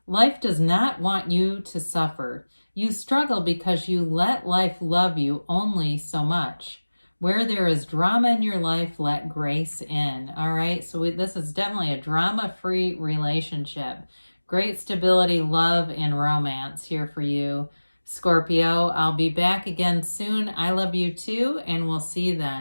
Life does not want you to suffer. You struggle because you let life love you only so much. Where there is drama in your life, let grace in. All right, so this is definitely a drama-free relationship. Great stability, love, and romance here for you, Scorpio. I'll be back again soon. I love you too, and we'll see you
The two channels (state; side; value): inverted; both; correlation -1.00